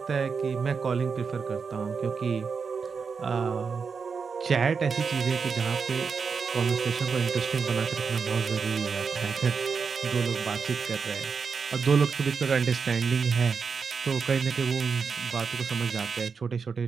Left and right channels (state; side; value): quieter; left; 5.6 dB